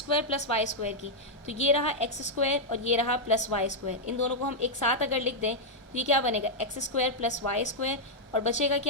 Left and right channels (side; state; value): both; normal; correlation -0.04